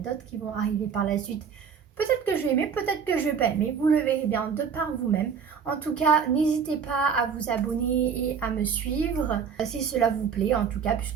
d'autres qui vont arriver par la suite. Peut-être que je vais aimer, peut-être que je vais pas aimer, vous le verrez bien de par vous-même. En tout cas, n'hésitez pas à vous abonner et à me suivre si cela vous plaît, en tout cas,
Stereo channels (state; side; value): quieter; left; 6.7 dB